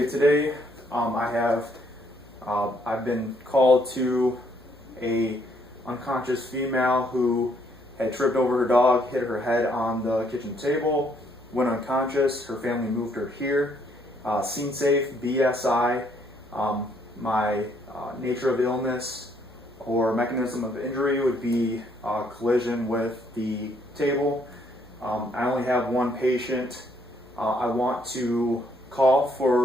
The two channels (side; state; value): both; normal; correlation 0.69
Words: today I've been called to a unconscious female who had tripped over her dog, hit her head on the kitchen table, went unconscious. Her family moved her here. Scene safe, BSI. My nature of illness or mechanism of injury would be collision with the table. I only have one patient. I want to call